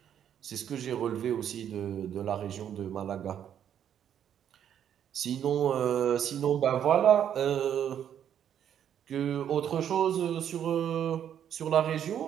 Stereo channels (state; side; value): quieter; left; 9.5 dB